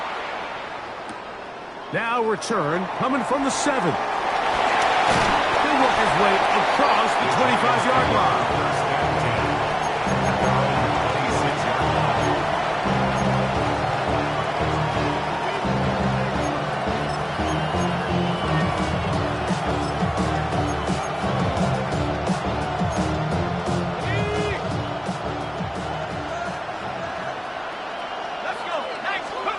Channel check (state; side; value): identical; both; correlation 1.00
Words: Now return coming from the 7. He'll work his way across the 25-yard line.